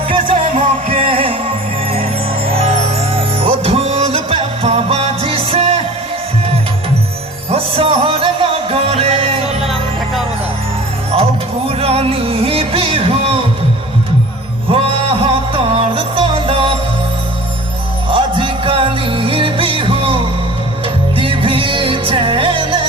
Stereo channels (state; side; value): normal; both; correlation 0.42